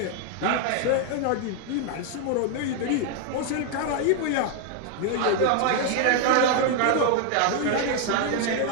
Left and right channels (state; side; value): different; both; correlation 0.01